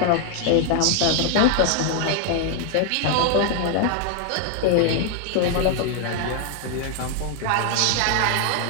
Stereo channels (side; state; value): both; different; correlation 0.00